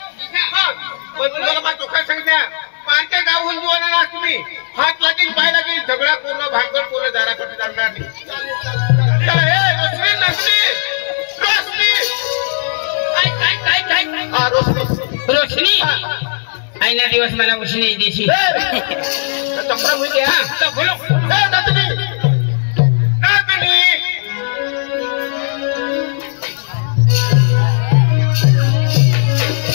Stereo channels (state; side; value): silent; right; digital silence